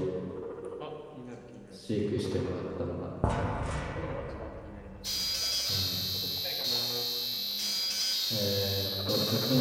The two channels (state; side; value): identical; both; correlation 1.00